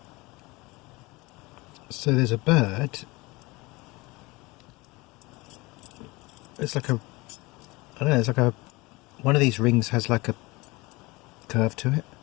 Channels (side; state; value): right; quieter; 23.3 dB